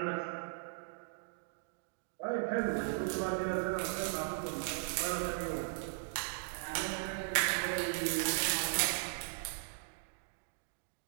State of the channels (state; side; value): silent; left; digital silence